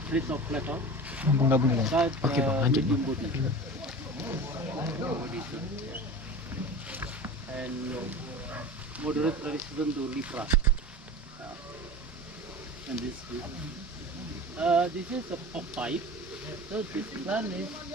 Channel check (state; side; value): normal; both; correlation 0.34